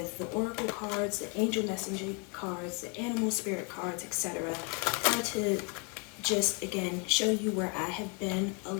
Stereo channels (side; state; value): right; quieter; 35.0 dB